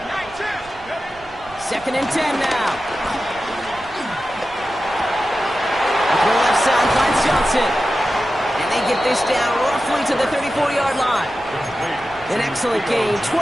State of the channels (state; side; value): noise; right; rumble, 23 dB below the sound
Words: Second and 10 now. Up the left side finds Johnson. And they get this down roughly to the 34-yard line. An excellent gain,